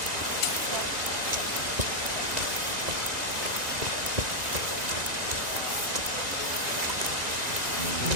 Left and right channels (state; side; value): late; left; 1.9 ms